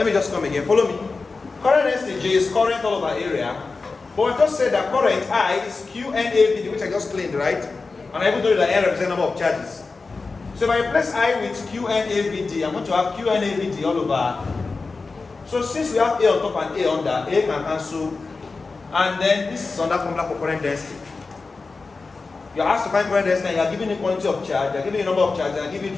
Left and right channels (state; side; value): quieter; right; 4.1 dB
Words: me just come again. Follow me. Current density J is current all over area But I just said that current I is QNAVD, which I just claimed, right? And I even told you that N represents number of charges. So if I replace I with QNAVD, I'm going to have QNAVD all over. So since we have A on top and A under, A can cancel. And then this is under formula for current density. You're asked to find current density and you're given the quantity of charge, you're given the number of charges, and you're given